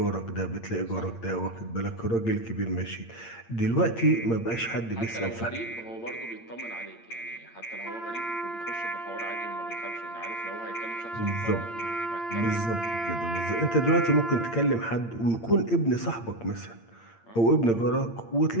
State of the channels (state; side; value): late; right; 8.7 ms